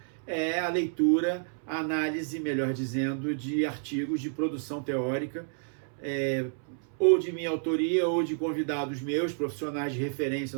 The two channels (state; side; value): silent; left; 58 dB below the other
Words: é a leitura, a análise, melhor dizendo, de artigos de produção teórica, ou de minha autoria, ou de convidados meus, profissionais de referência